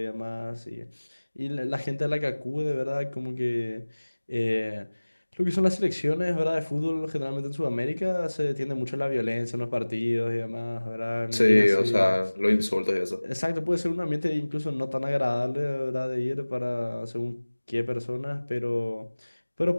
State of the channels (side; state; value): both; inverted; correlation -1.00